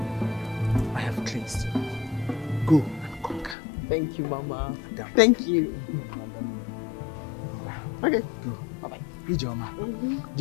I have cleansed you. Go and conquer. Thank you, Mama. Madam. Thank you. Okay. Go. Bye-bye. Ijoma.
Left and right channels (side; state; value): right; drops out; at 3.6 s